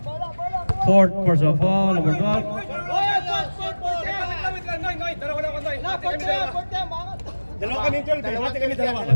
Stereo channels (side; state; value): both; inverted; correlation -1.00